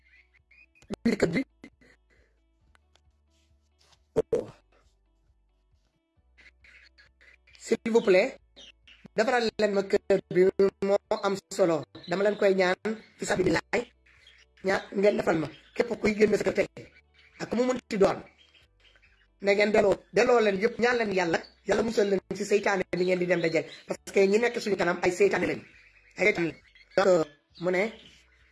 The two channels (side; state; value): both; identical; correlation 1.00